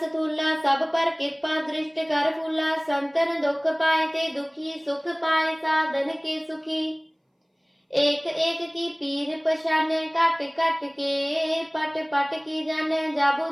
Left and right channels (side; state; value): both; identical; correlation 1.00